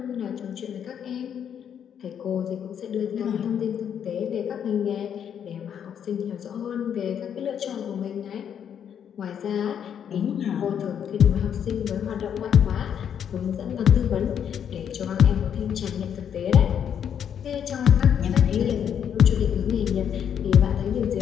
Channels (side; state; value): right; quieter; 8.6 dB